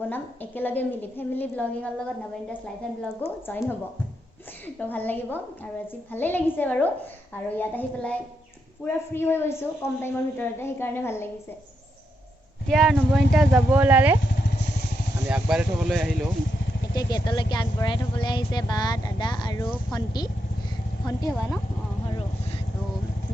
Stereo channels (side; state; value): both; normal; correlation 0.82